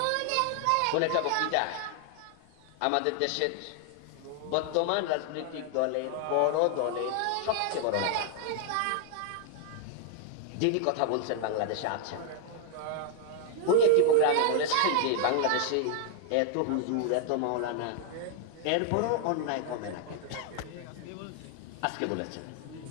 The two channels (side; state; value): both; different; correlation 0.00